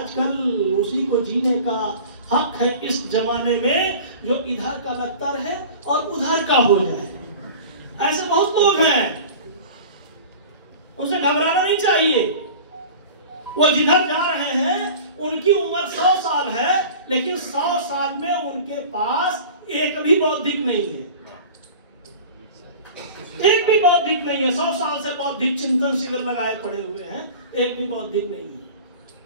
उसी को जीने का हक है इस जमाने में, जो इधर का लगता रहे और उधर का हो जाए। ऐसे बहुत लोग हैं, उनसे घबराना नहीं चाहिए। वो जिधर जा रहे हैं, उनकी उम्र 100 साल है, लेकिन 100 साल में उनके पास एक भी बौद्धिक नहीं है, एक भी बौद्धिक नहीं है। 100 साल से बौद्धिक चिंतन शिविर लगाए पड़े हुए हैं, एक भी बौद्धिक नहीं है।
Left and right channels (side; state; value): both; inverted; correlation -0.38